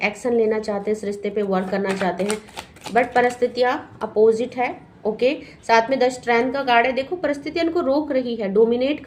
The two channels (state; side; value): identical; both; correlation 1.00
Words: एक्शन लेना चाहते हैं, इस रिश्ते पे वर्क करना चाहते हैं, बट परिस्थितियां अपोजिट है। ओके, साथ में 10 स्ट्रेंथ का कार्ड है। देखो परिस्थितियां इनको रोक रही है, डोमिनेट